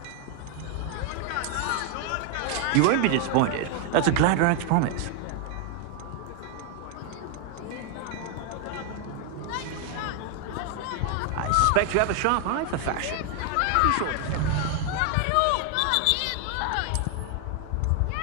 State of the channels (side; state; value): both; different; correlation 0.00